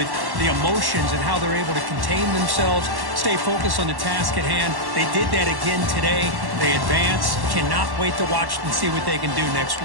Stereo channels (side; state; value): left; late; 1.1 ms